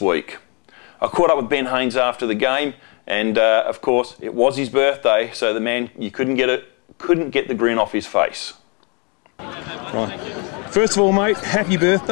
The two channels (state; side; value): quieter; right; 33.2 dB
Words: I caught up with Ben Haynes after the game, and of course, it was his birthday, so the man, you couldn't get the grin off his face. Right. First of all, mate, happy